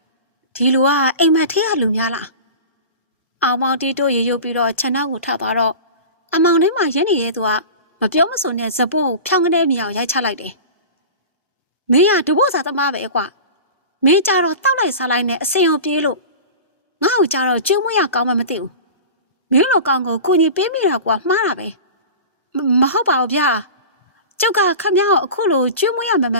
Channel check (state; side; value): inverted; both; correlation -0.33